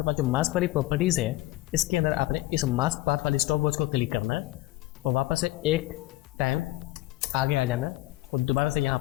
पास जो मास्क वाली प्रॉपर्टीज़ है, इसके अंदर आपने इस मास्क पाथ वाली स्टॉप वॉच को क्लिक करना है और वापस से एक टाइम आगे आ जाना है और दोबारा से यहाँ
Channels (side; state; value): right; quieter; 18.0 dB